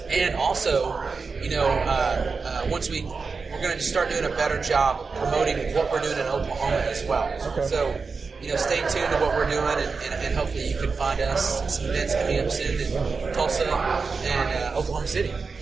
And also, once we're going to start doing a better job of promoting what we're doing in Oklahoma as well. Okay. So, stay tuned to what we're doing, and hopefully you can find us at some events coming up soon in Tulsa and Oklahoma City.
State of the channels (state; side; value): quieter; left; 4.7 dB